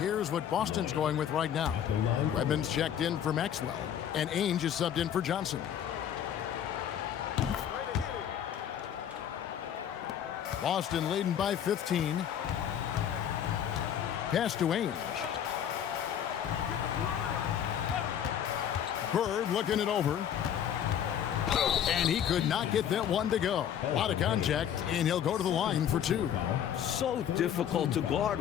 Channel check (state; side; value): quieter; right; 9.5 dB